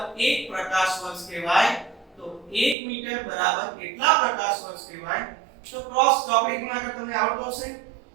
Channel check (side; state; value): left; drops out; at 2.8 s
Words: 1 પ્રકાશ વર્ષ કહેવાય. તો 1 મીટર બરાબર કેટલા પ્રકાશ વર્ષ કહેવાય? તો ક્રોસ ચોકડી ગુણાકાર તમને આવડતો હશે,